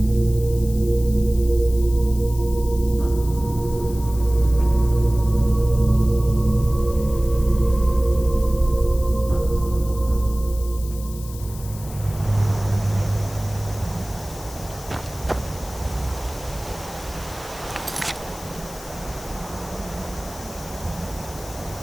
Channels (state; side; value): noise; left; hiss, 16 dB below the sound